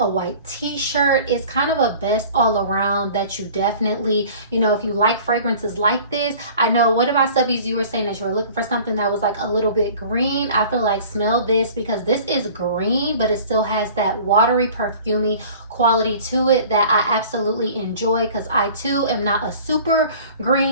white t-shirt. It's kind of a best all around that you definitely, you know, if you like fragrances like this. I know one of my subbies, you were saying that you were looking for something that was like a little bit green. I feel like smell this, because this is green, but it still has that watery, perfumey quality to it that I absolutely enjoy, because I too am not a super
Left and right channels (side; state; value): both; inverted; correlation -0.46